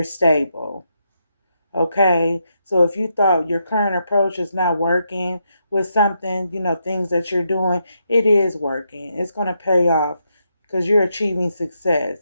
stable. Okay, so if you thought your current approach is not working with something, things that you're doing, it is working. It's going to pay off because you're achieving success,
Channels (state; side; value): inverted; both; correlation -0.81